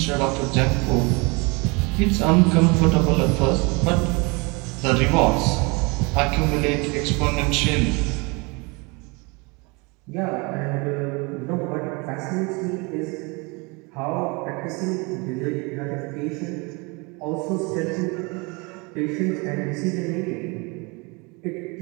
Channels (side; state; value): left; quieter; 28.6 dB